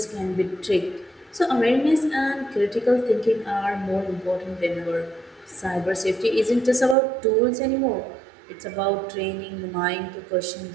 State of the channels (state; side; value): drops out; left; at 7.0 s